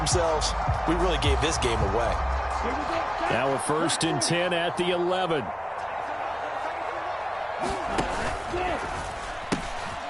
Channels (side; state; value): both; identical; correlation 1.00